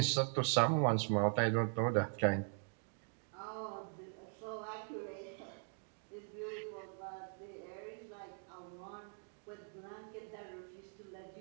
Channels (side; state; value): left; silent; 50 dB below the other